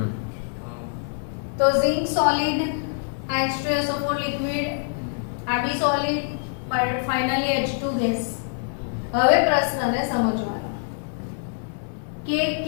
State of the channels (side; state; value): right; silent; 62 dB below the other